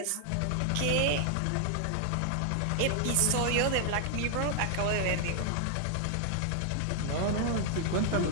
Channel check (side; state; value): both; different; correlation 0.00